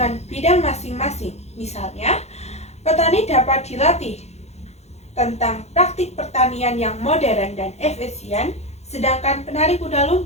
bidang masing-masing, misalnya, petani dapat dilatih tentang praktik pertanian yang modern dan efisien, sedangkan penari kuda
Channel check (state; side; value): late; right; 0.31 ms